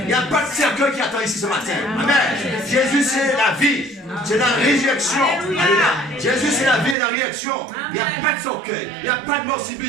n'y a pas de cercueil qui attend ici ce matin. Amen. Jésus, c'est la vie. C'est la résurrection. Alléluia. Jésus, c'est la vie et la réaction. Il n'y a pas de cercueil. Il n'y a pas de mort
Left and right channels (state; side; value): drops out; left; at 7.0 s